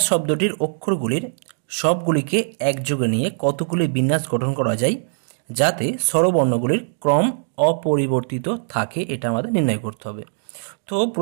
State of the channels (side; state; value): left; silent; digital silence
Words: শব্দটির অক্ষরগুলির সবগুলিকে একযোগে নিয়ে কতগুলি বিন্যাস গঠন করা যায় যাতে স্বরবর্ণগুলির ক্রম অপরিবর্তিত থাকে, এটা আমাদের নির্ণয় করতে হবে। তো